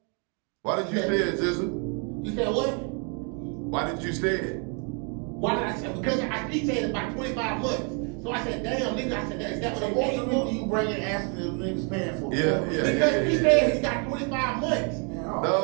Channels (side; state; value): left; quieter; 37.1 dB